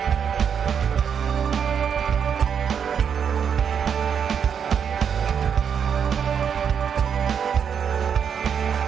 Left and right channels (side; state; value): left; quieter; 7.5 dB